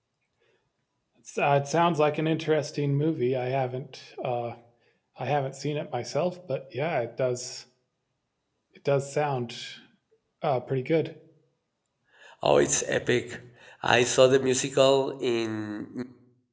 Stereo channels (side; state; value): both; identical; correlation 1.00